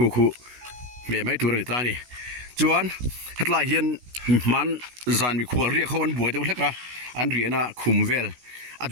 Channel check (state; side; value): late; left; 16 ms